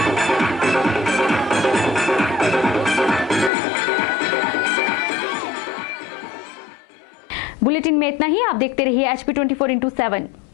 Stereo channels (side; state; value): right; drops out; at 3.5 s